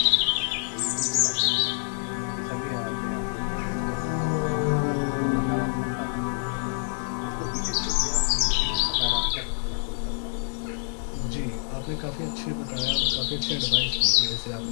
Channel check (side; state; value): right; silent; 58 dB below the other